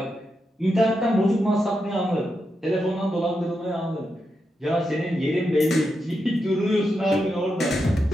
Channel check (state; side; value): normal; both; correlation 0.86